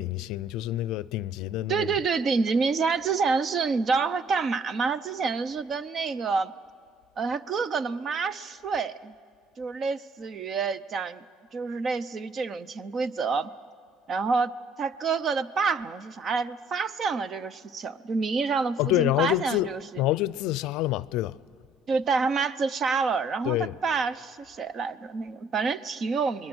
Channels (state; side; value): normal; both; correlation 0.61